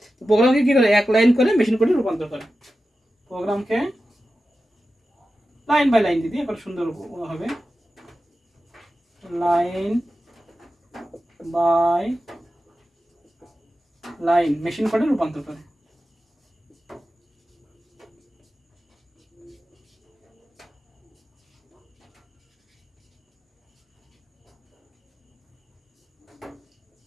তো প্রোগ্রামকে কি করে এক লাইন করে মেশিন কোডে রূপান্তর করে। প্রোগ্রামকে লাইন বাই লাইন দিদি এবার সুন্দর হবে, লাইন বাই লাইন মেশিন কোডে রূপান্তর করে।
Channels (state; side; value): normal; both; correlation 0.93